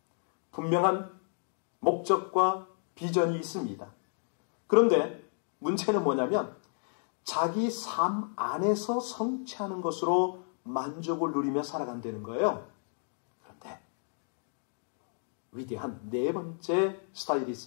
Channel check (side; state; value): right; silent; 56 dB below the other